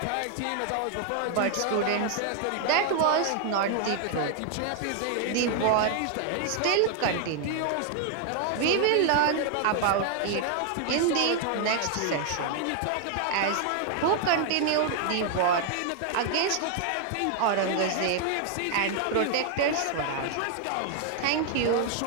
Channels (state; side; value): different; both; correlation 0.00